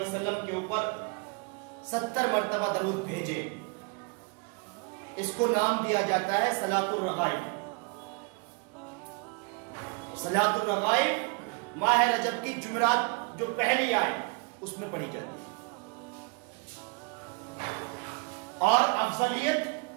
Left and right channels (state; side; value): quieter; left; 33.7 dB